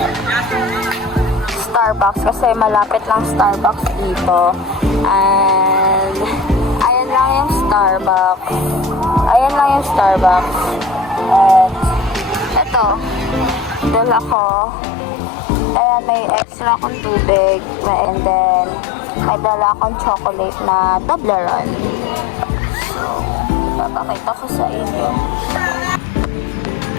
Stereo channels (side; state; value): right; drops out; at 14.4 s